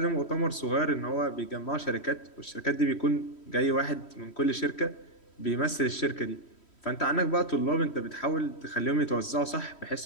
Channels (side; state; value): right; late; 3.1 ms